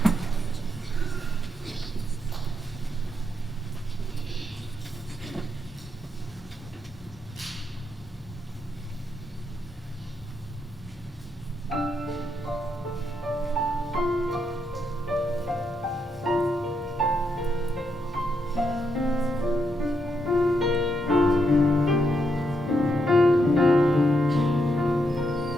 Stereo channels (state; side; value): normal; both; correlation 0.79